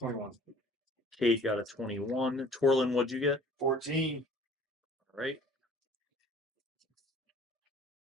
Cade got a 21. Torlin, what'd you get? 14. All right.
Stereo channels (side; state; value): both; normal; correlation 0.51